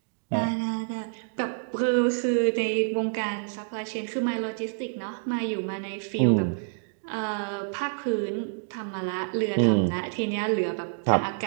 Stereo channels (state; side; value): silent; left; digital silence